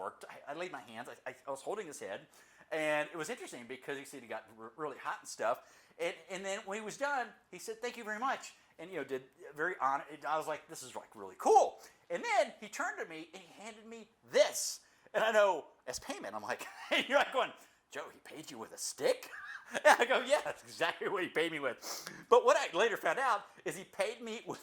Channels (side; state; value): both; identical; correlation 1.00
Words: I laid my hands. I was holding his head. And it was interesting because he said he got really hot and stuff. And then when he was done, he said, thank you very much. And, did very honored. I was like, this is like really cool. And then he turned to me and he handed me this. And I know, as payment, I'm like, you're like going, Joe, he paid you with a stick? And I go, yeah, that's exactly what he paid me with. But what I later found out is he paid me